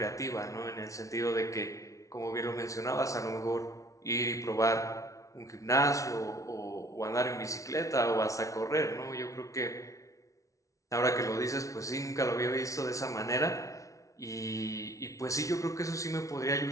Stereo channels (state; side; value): late; right; 0.16 ms